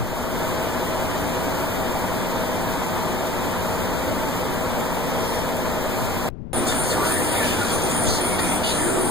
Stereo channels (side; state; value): left; noise; rumble, 9 dB below the sound